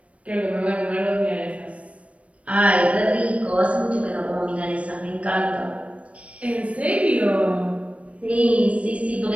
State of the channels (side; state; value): left; late; 0.064 ms